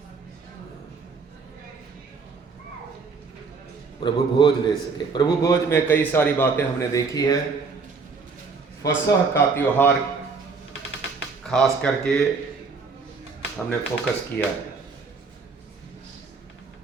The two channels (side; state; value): left; quieter; 4.7 dB